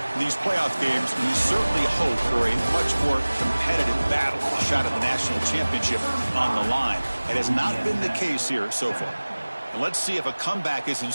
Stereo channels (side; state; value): both; inverted; correlation -1.00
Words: In these playoff games, we certainly hope for a much more competitive battle, a shot at the national championship on the line. It has not been the case here so far. And let's see if a comeback is in